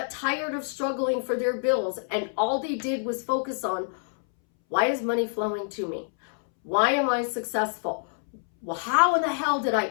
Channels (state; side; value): silent; right; 60 dB below the other